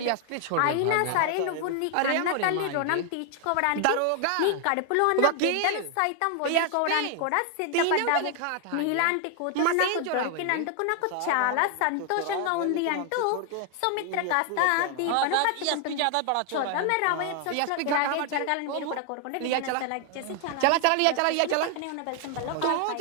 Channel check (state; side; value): different; both; correlation 0.00